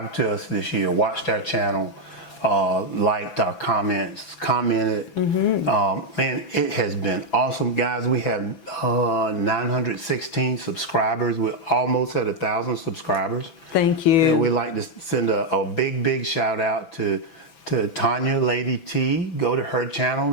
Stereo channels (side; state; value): right; late; 6.0 ms